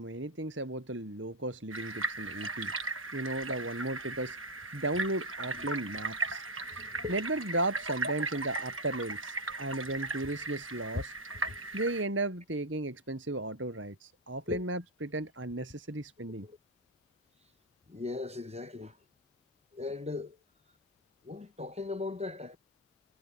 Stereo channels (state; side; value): normal; both; correlation 0.00